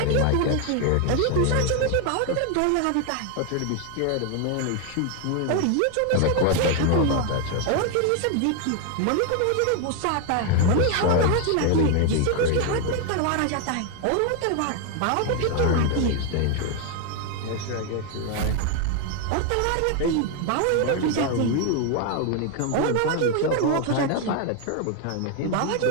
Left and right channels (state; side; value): different; both; correlation 0.01